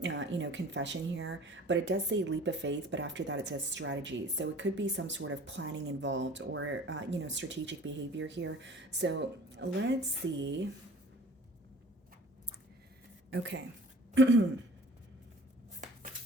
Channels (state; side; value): normal; both; correlation 0.47